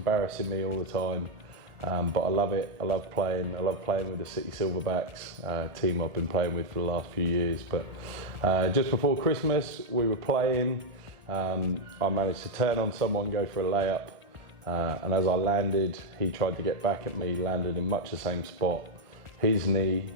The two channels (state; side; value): late; left; 1.4 ms